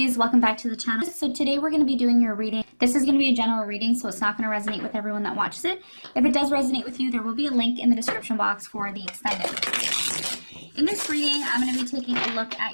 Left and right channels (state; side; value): inverted; both; correlation -1.00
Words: welcome back to the channel. So today we're going to be doing your reading. This is going to be a general reading, so it's not going to resonate with everyone that watches it. If it does resonate with you, there will be a link in the description box for the extended. In this reading, I'm going to be taking a look